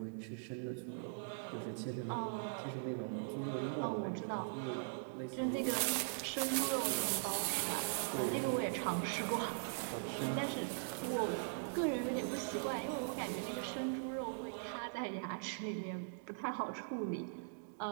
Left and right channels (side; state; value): left; silent; digital silence